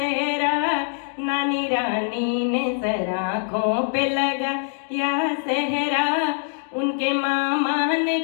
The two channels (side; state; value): right; silent; digital silence